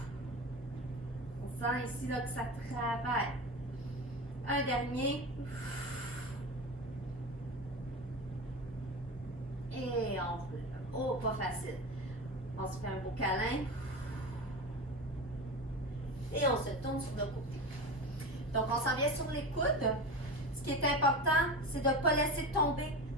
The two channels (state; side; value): normal; both; correlation 0.26